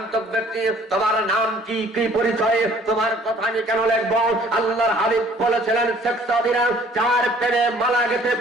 ব্যক্তি তোমার নাম কি কি পরিচয় তোমার কথা আমি কেন লিখব আল্লাহর হাবিব বলেছিলেন শেখ সাদিরা চার প্রেমে মালা গেতে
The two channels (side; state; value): both; normal; correlation 0.56